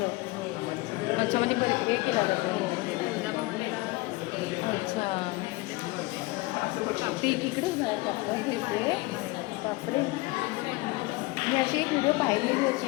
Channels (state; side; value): quieter; right; 22.2 dB